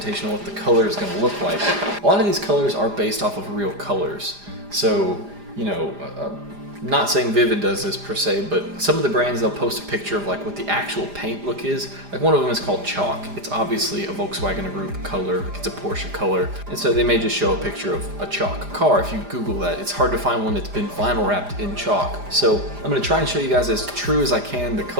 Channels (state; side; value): late; left; 4.9 ms